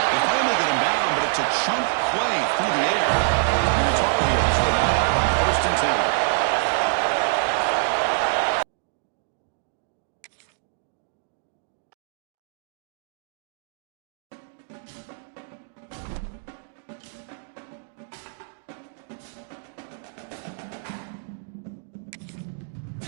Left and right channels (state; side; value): silent; left; digital silence